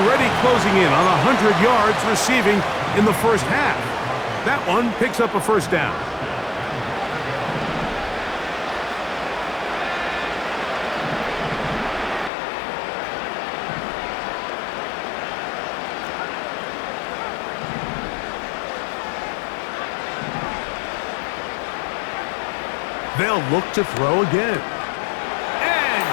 closing in on 100 yards receiving in the first half. That one picks up a first down. They'll look to throw again.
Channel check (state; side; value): drops out; right; at 12.3 s